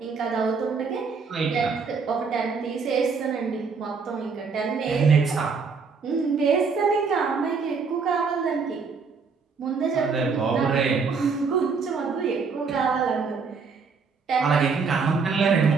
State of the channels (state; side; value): quieter; left; 5.1 dB